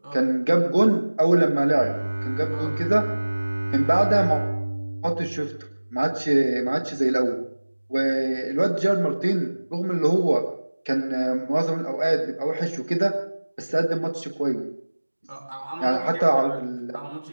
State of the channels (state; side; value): inverted; both; correlation -1.00